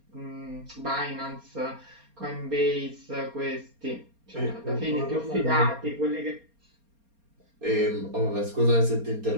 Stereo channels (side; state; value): left; late; 4.3 ms